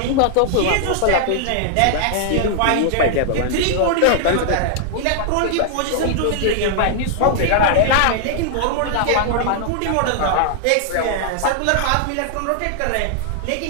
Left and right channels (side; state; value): both; different; correlation -0.01